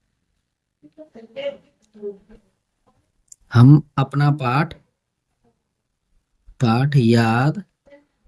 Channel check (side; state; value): both; identical; correlation 1.00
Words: हम अपना पाठ याद